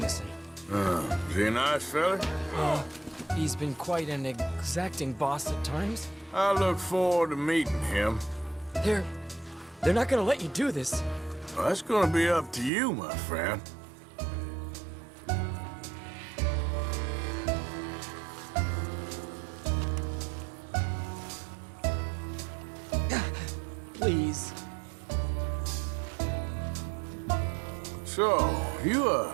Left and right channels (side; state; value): left; drops out; at 12.7 s